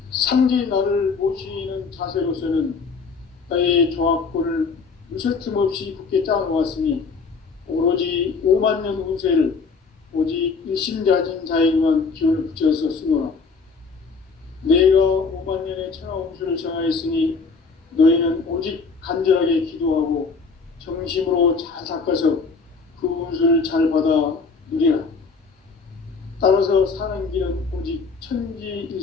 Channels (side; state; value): right; quieter; 4.8 dB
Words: 상제인 나를 모시는 자세로서는 나의 조합권을 무설틈 없이 굳게 짜놓았으니 오로지 5만 년 운세를 오직 일심자진 자에게만 기운을 붙여서 쓰노라. 내가 5만 년의 천하 운수를 정하였으니 너희는 오직 간절하게 기도하고 정심으로 잘 닦아서 그 운수를 잘 받아 누리라. 따라서 사는 길은 오직